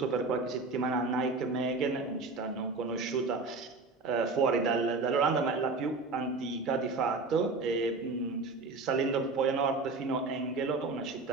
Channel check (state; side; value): quieter; left; 3.8 dB